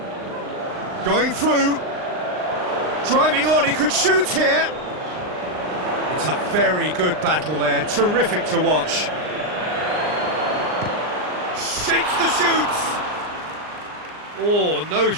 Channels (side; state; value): left; late; 39 ms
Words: Going through. Driving on, he could shoot here. It's a very good battle there, terrific to watch. Shapes the shoots! Oh, no